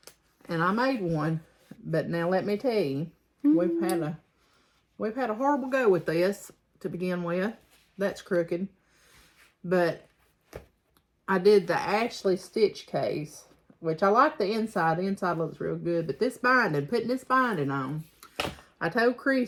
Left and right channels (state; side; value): identical; both; correlation 1.00